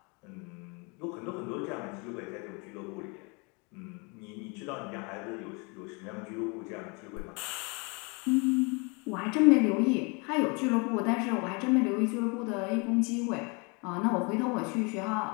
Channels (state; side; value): quieter; right; 31.2 dB